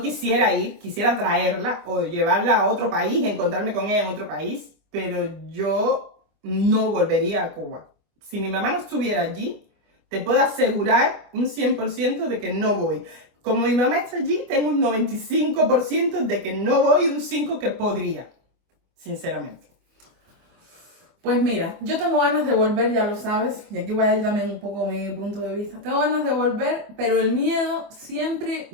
quisiera ir, quisiera traerla o llevarla a otro país, encontrarme con ella en otro país, pero yo no volvería a Cuba. Si mi mamá no estuviera allí, te puedo asegurar un 100% de que no voy. Como mi mamá está allí, tengo un 95% de que no voy y un 5% que podría, sinceramente. Pues mira, yo tengo ganas de volver, ya lo sabes, y aquí voy a ir también un poco mi punto de vista. Tengo ganas de volver, pero el miedo siempre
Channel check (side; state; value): left; late; 25 ms